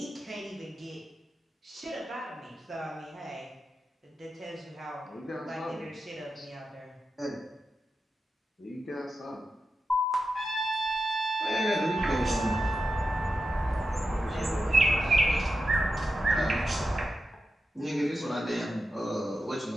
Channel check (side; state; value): both; normal; correlation 0.89